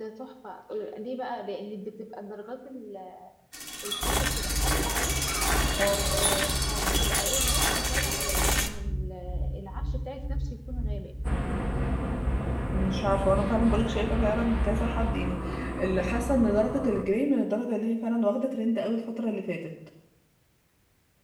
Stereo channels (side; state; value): both; identical; correlation 1.00